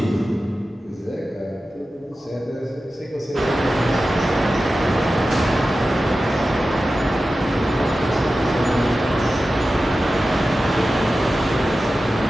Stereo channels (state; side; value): normal; both; correlation 0.94